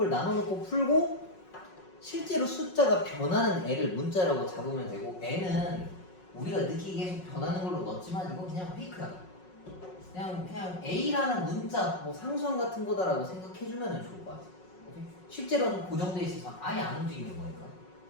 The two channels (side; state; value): right; late; 5.5 ms